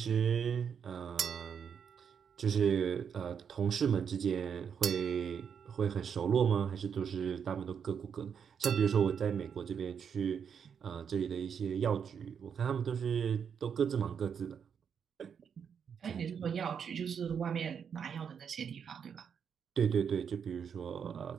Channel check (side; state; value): left; quieter; 7.3 dB